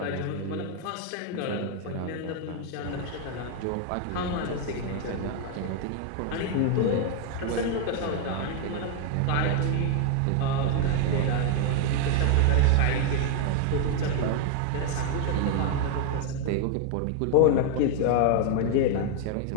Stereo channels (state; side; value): different; both; correlation 0.00